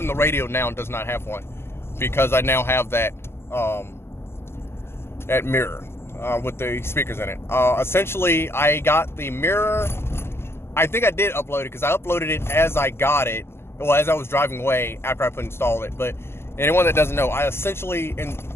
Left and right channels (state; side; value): late; right; 0.12 ms